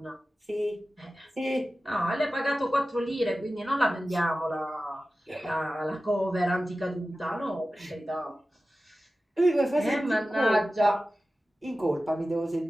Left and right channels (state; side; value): normal; both; correlation 0.95